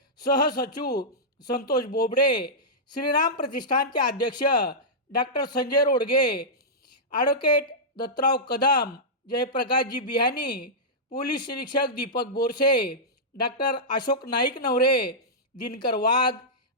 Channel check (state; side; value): normal; both; correlation -0.11